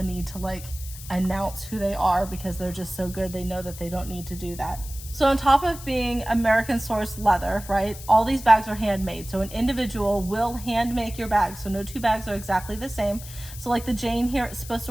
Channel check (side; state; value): left; noise; hiss, 14 dB below the sound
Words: need to announce who they are because they're just so good. They know that they don't need to do that. So on top of being American sourced leather, right, all these bags are handmade. So an individual will hand make your bag. So no two bags are exactly the same. So the Jane here, it's supposed